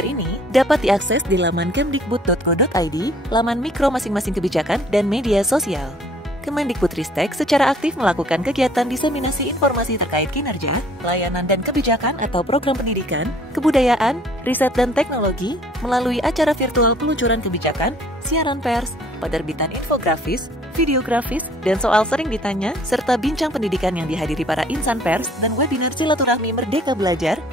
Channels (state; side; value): normal; both; correlation 0.56